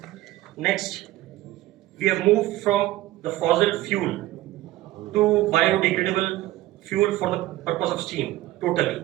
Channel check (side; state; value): left; quieter; 16.3 dB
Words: Next, we have moved from the fossil fuel to biodegradable fuel for the purpose of steam totally.